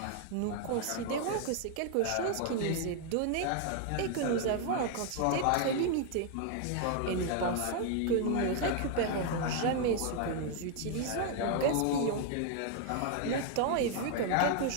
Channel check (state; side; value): different; both; correlation 0.00